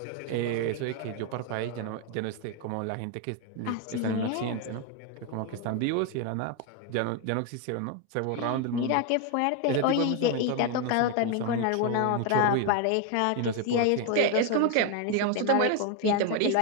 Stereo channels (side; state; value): both; different; correlation 0.01